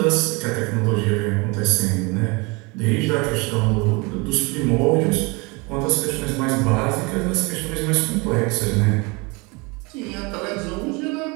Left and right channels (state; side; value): quieter; left; 27.6 dB